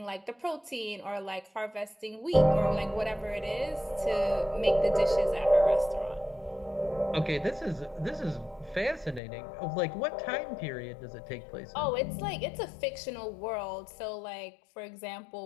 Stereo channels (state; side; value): drops out; right; at 9.2 s